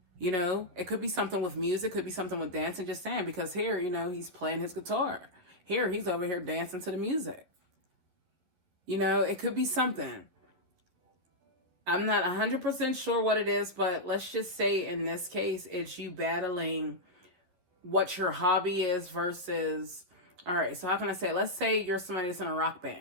You know, it could be something with music, could be something with dancing, just saying, because here, you know, he's playing his guitar. Here, he's over here dancing to the music. You know, it could be something. I'm not 100% sure what it is, but let's just say in this case, it's you battling what your hobby is versus, all right, so how can I say it? Let's say you're somebody that's in a rock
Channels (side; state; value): left; late; 12 ms